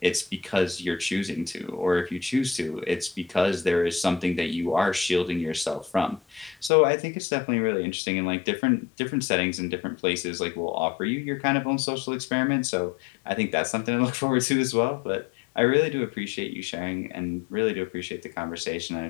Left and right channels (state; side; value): drops out; right; at 6.7 s